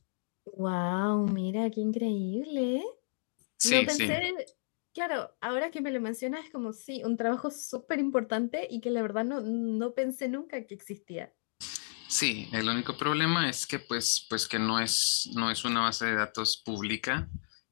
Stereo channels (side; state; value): right; silent; digital silence